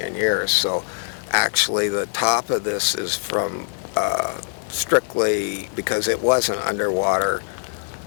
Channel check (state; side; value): silent; right; digital silence